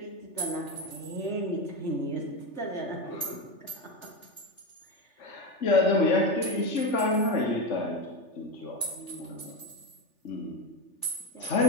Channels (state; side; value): late; right; 3.4 ms